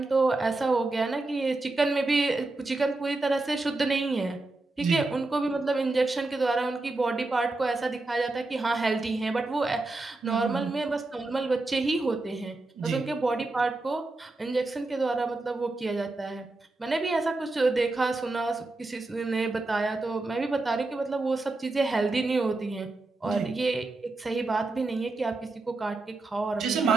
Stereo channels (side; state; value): left; quieter; 3.1 dB